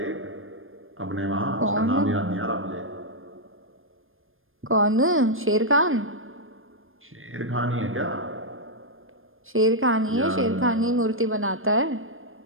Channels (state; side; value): late; left; 0.60 ms